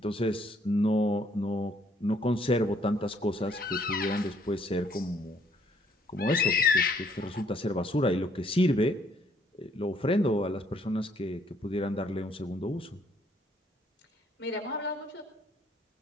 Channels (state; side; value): normal; both; correlation 0.66